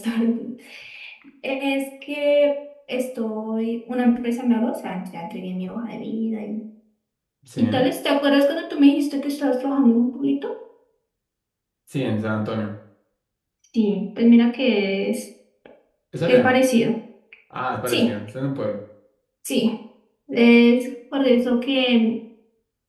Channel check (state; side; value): identical; both; correlation 1.00